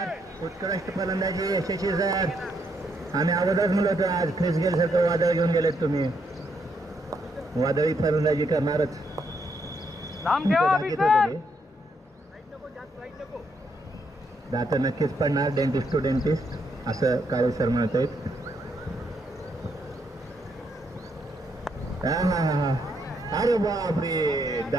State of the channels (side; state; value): both; normal; correlation 0.76